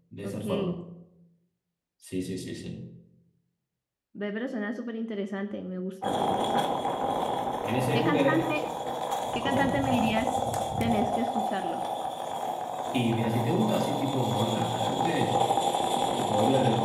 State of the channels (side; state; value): both; identical; correlation 1.00